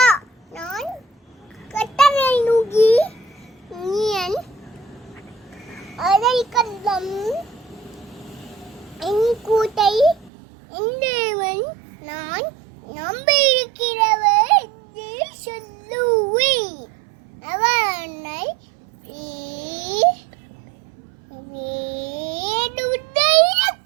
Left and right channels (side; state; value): left; drops out; at 10.3 s